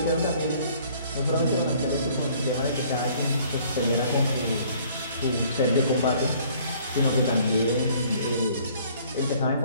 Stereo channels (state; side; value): inverted; both; correlation -0.57